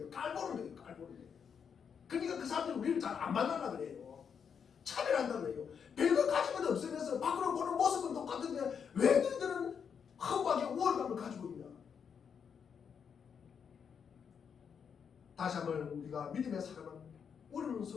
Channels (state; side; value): quieter; right; 7.0 dB